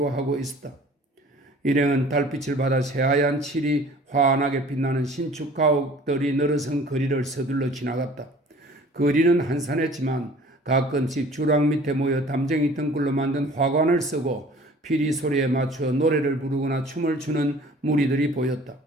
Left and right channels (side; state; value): both; normal; correlation 0.49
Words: 있었다. 일행은 달빛을 받아 새하얀 칠이 환하게 빛나는 신축 가옥들이 늘어선 거리를 서둘러 지나갔다. 거리는 한산했지만 가끔씩 주랑 밑에 모여 담쟁이 등굴로 만든 화관을 쓰고 피리 소리에 맞추어 노래를 부르거나 춤을 추는 무리들이 보였다.